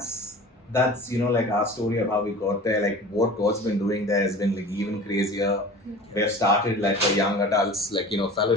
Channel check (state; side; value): normal; both; correlation 0.39